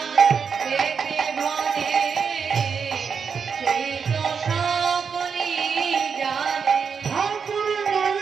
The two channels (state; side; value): quieter; left; 6.2 dB